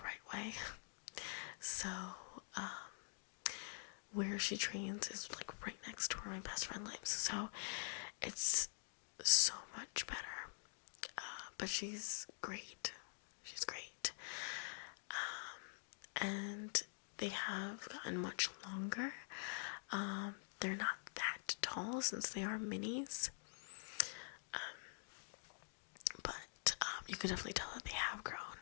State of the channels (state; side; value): silent; right; digital silence